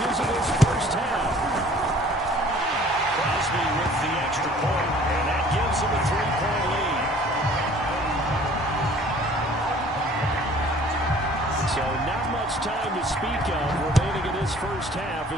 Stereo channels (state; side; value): normal; both; correlation 0.52